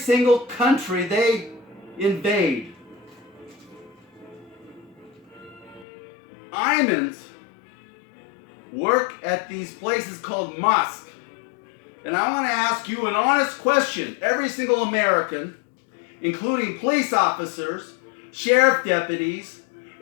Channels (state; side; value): drops out; right; at 5.9 s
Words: country they invade. Imams work at these places called mosques. And I want to ask you an honest question. Every single American, including police officers, sheriff deputies,